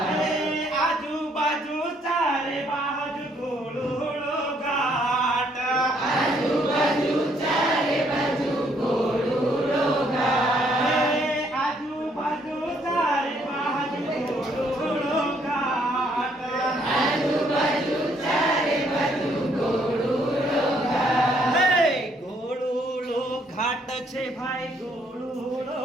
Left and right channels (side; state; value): both; normal; correlation 0.68